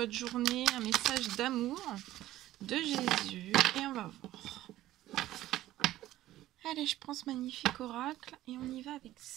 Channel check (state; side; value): quieter; left; 14.7 dB